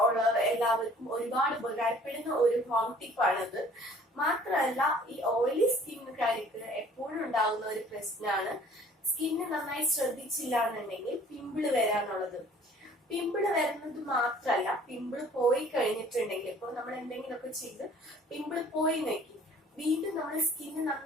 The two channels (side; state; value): both; normal; correlation 0.53